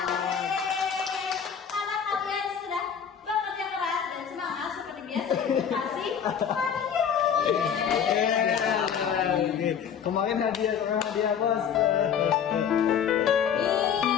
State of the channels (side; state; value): right; quieter; 7.8 dB